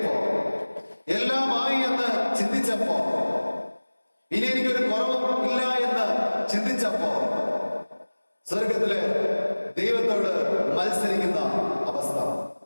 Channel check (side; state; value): both; inverted; correlation -1.00